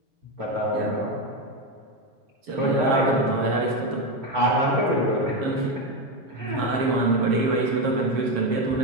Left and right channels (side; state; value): left; late; 7.2 ms